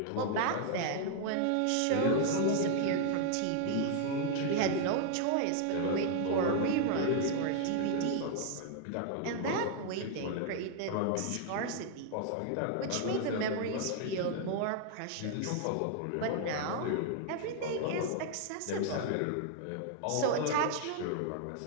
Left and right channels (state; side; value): different; both; correlation 0.00